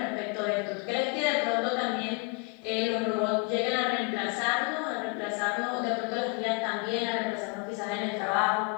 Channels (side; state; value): right; quieter; 31.9 dB